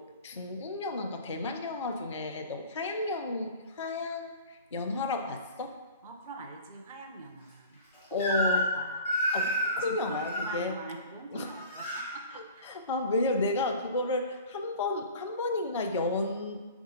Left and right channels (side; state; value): both; inverted; correlation -0.41